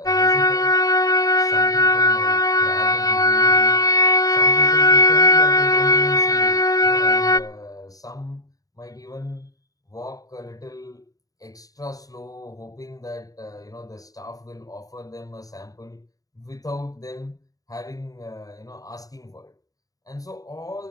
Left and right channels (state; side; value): late; right; 0.17 ms